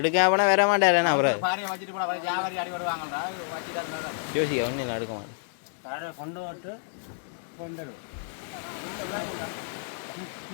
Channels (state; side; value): silent; right; digital silence